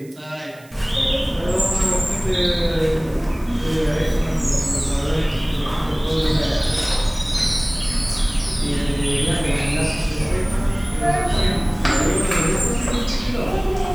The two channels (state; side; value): noise; right; hiss, 26 dB below the sound